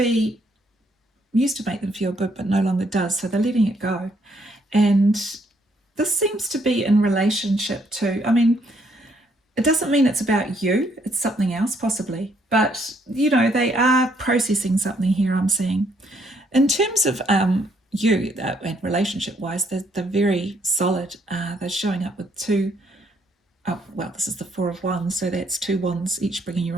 them feel good, but no longer does. So they're letting it go. And this seems to be in relationship to, it doesn't mean it's about you, it's something else possibly, but they are processing something here, I'm seeing. In terms of you, and relationship wise, they're very solid. They're showing up with two, this is the Four of Wands, so that's two wands, each bringing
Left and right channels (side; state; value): both; normal; correlation 0.69